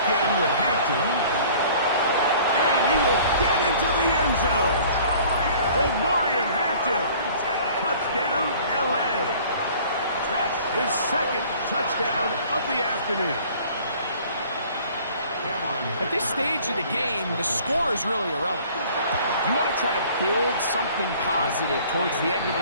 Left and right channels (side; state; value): both; inverted; correlation -0.51